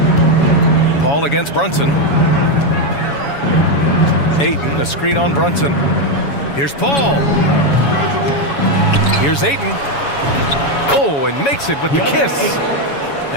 Paul against Brunson. Ayton, a screen on Brunson. Here's Paul. Here's Ayton. Oh, and makes it with the kiss.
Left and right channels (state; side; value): late; right; 7.1 ms